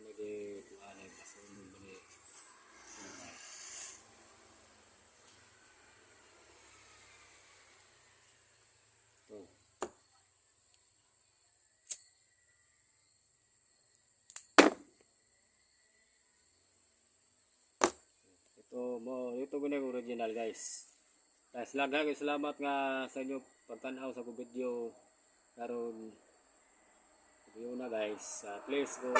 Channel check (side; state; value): both; identical; correlation 1.00